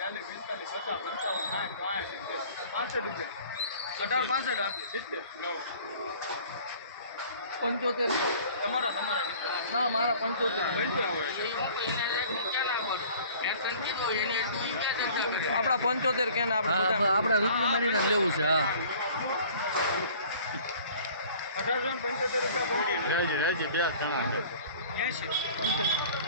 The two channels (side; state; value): both; inverted; correlation -0.49